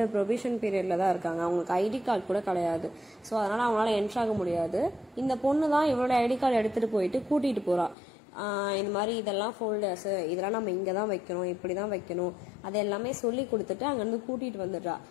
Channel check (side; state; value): right; drops out; at 8.0 s